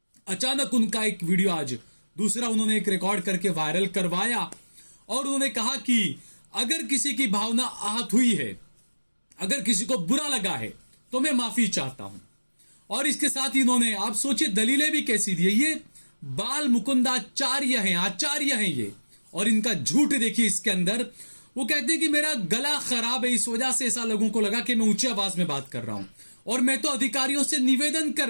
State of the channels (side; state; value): both; inverted; correlation -1.00